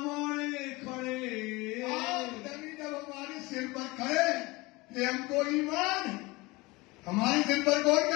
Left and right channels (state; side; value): quieter; right; 22.9 dB